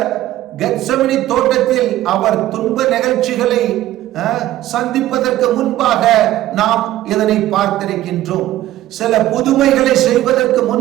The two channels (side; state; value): left; quieter; 14.4 dB